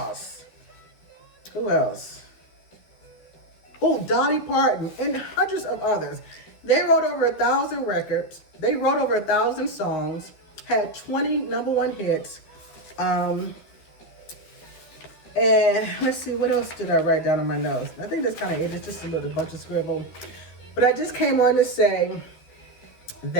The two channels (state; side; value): late; right; 12 ms